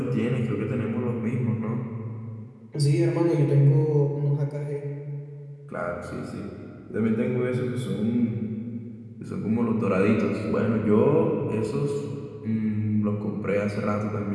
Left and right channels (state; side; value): identical; both; correlation 1.00